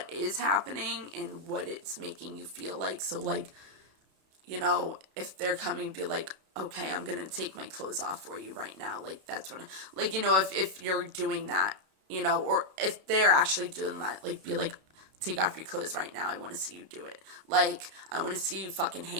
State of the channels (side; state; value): left; late; 32 ms